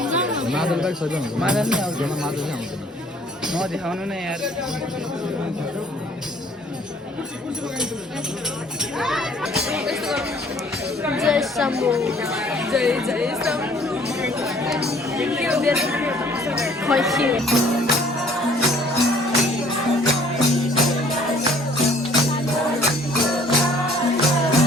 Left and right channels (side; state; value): both; normal; correlation 0.57